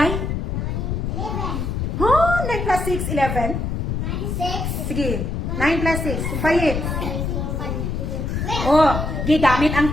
11. Oh, 9 plus 6, 11. 6. Sige, 9 plus 6. Sumpayin. Oh, gigamit ang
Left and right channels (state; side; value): noise; left; rumble, 2 dB below the sound